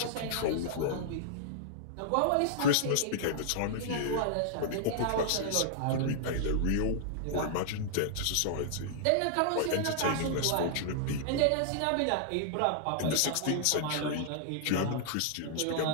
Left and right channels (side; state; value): both; different; correlation -0.01